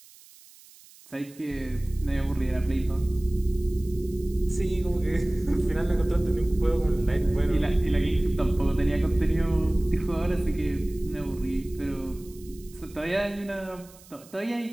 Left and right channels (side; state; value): right; noise; hiss, 23 dB below the sound